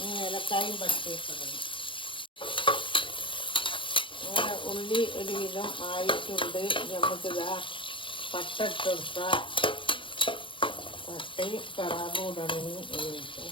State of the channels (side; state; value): right; late; 0.25 ms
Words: ഏലക്കായും പച്ചയിടണം. അങ്ങനെ ഉള്ളി ഒരുവിധം ആയിട്ടുണ്ട്. നമുക്കിതാ പട്ട ഇട്ട് കൊടുക്കാം. പട്ടയും കറാബും